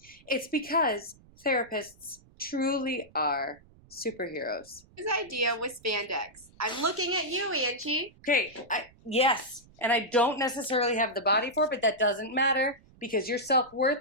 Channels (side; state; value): right; noise; rumble, 26 dB below the sound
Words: It's because therapists truly are superheroes. His idea was spandex. I'm looking at you, Angee. Okay, yes, and I don't necessarily have the body for it, but that doesn't matter because your self-worth